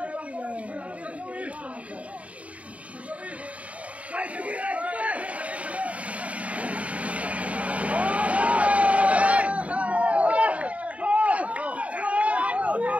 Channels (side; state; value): left; late; 0.067 ms